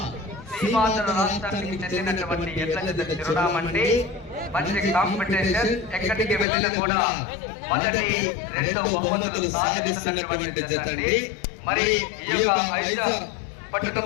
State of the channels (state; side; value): drops out; right; at 6.5 s